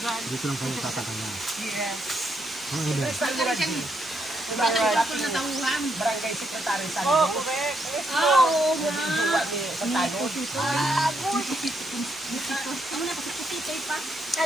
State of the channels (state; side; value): normal; both; correlation 0.77